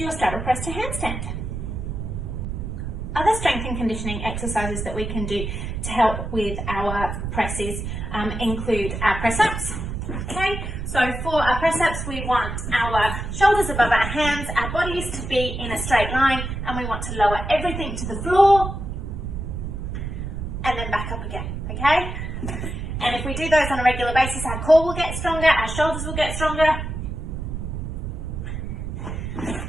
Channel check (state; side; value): noise; right; rumble, 5 dB below the sound